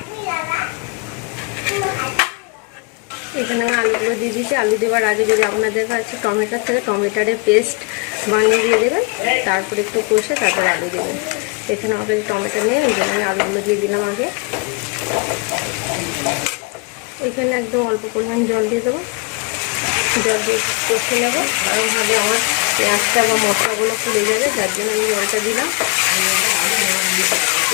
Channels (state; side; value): quieter; right; 28.4 dB